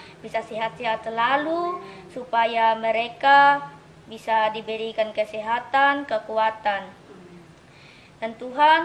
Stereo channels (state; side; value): identical; both; correlation 1.00